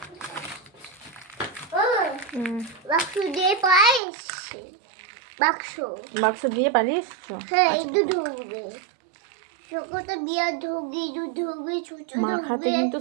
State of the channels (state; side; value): drops out; left; at 4.0 s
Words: বাক্স দিয়ে পারিস? বাক্স দিয়ে পারিস? হ্যাঁ, একটু ঢুকবে চোখটা দিয়ে ঢুকবে মাখাতে কিন্তু